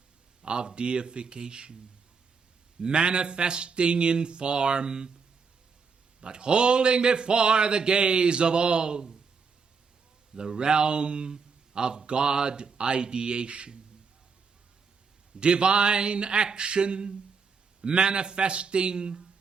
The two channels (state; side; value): quieter; left; 5.3 dB